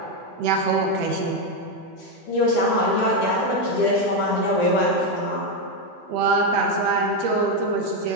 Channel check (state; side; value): normal; both; correlation 0.06